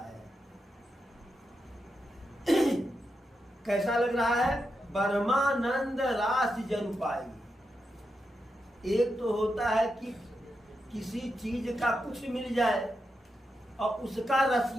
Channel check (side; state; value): both; normal; correlation 0.86